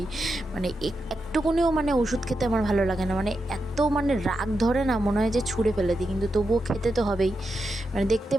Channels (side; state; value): both; normal; correlation 0.87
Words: মানে একটুকুনিও মানে ওষুধ খেতে আমার ভালো লাগে না, মানে এত মানে রাগ ধরে না, মনে হয় যে ছুঁড়ে ফেলে দিই, কিন্তু তবুও খেতে তো হবেই। মানে দেখতে